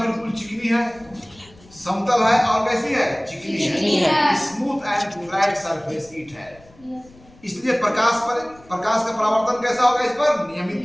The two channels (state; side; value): noise; left; rumble, 26 dB below the sound